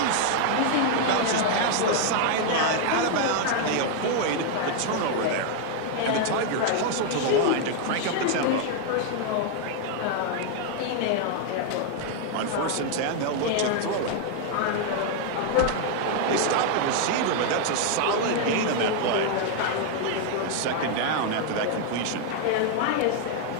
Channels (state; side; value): different; both; correlation 0.00